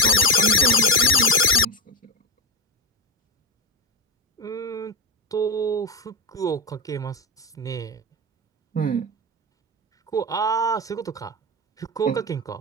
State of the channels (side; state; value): both; normal; correlation 0.13